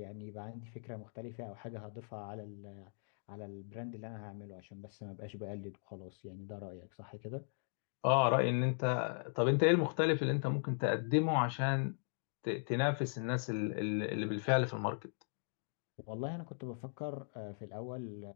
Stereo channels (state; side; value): silent; right; digital silence